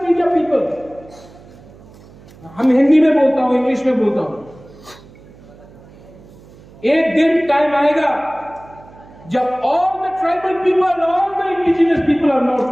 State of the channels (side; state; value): right; noise; hum, 23 dB below the sound